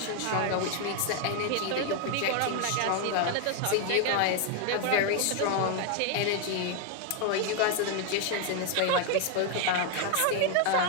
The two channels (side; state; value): both; different; correlation 0.01